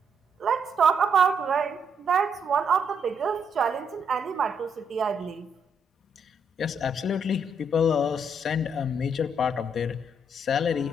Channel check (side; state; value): both; normal; correlation 0.74